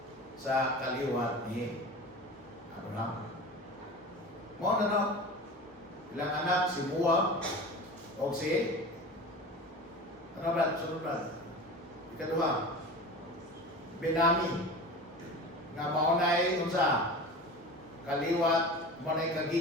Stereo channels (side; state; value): both; normal; correlation 0.33